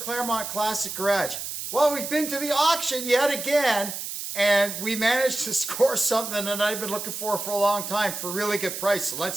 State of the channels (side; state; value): right; noise; hiss, 6 dB below the sound